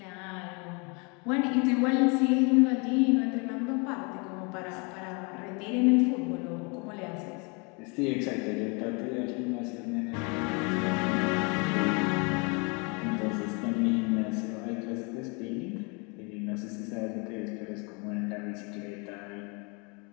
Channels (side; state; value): right; quieter; 32.0 dB